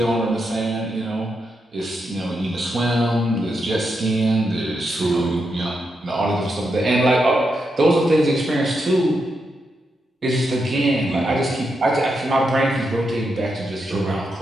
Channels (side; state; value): both; normal; correlation 0.84